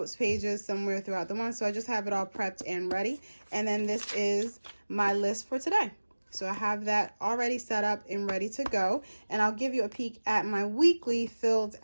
pages somewhere throughout the month. So I just have it all prepped and ready. And then this is my list for today. So I have that already set up and ready to go. And I'll give you a peek at my weekly filled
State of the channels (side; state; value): both; inverted; correlation -1.00